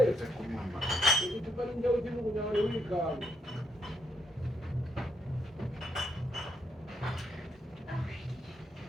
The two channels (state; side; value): normal; both; correlation 0.76